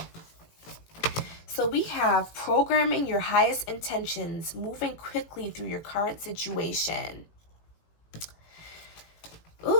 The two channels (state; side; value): late; right; 18 ms